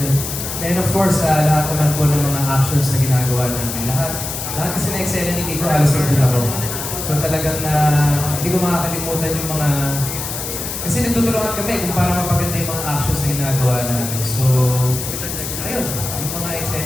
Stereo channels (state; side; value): noise; left; hiss, 6 dB below the sound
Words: yun. And of course, lahat naman po ng mga actions na ginagawa namin. Lahat kasi na eksena ni Kiko, halos nandun ako. So talagang hindi ko makakalimutan yung mga... Kasi nagtutulungan kami kung para mapaganda yung mga actions na ginagawa namin. So, ayun, yung mga